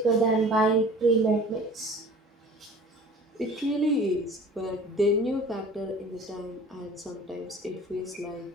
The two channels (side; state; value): both; normal; correlation 0.44